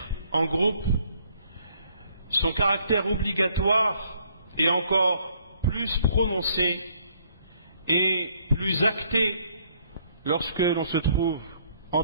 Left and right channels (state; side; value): inverted; both; correlation -0.65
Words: en groupe, son caractère obligatoire et encore plus prononcée et plus actée lorsque l'on se trouve en